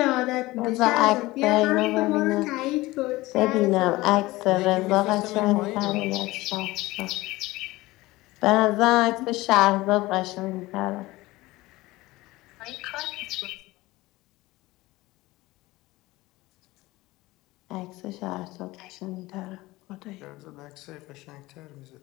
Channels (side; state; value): right; quieter; 19.5 dB